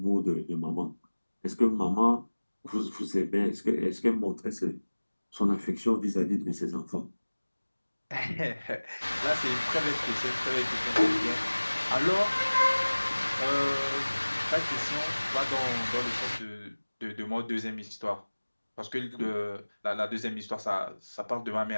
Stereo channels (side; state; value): both; inverted; correlation -1.00